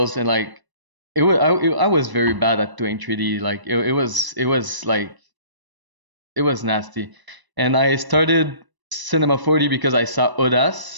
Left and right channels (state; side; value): late; left; 1.0 ms